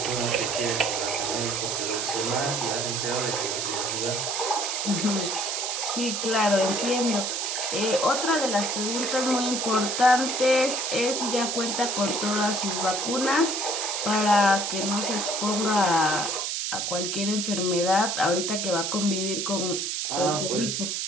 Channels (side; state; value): right; noise; hiss, 1 dB below the sound